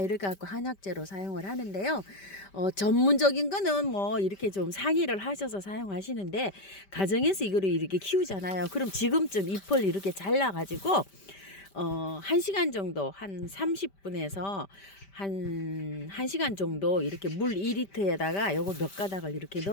갖고 한약재로 사용을 하는데요. 전문적인 거는 뭐 이렇게 좀 상의를 하셔서 사용하시는데, 가정에서 이거를 이렇게 키우잖아요. 그럼 지금쯤 잎을 이렇게 잘라가지고 1시간 정도, 한 30분에서 한 1시간 정도 이렇게 물 2리터에다가 요거 몇 가닥을 이렇게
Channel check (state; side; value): late; right; 5.1 ms